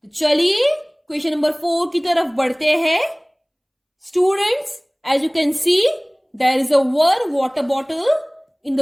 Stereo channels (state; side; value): identical; both; correlation 1.00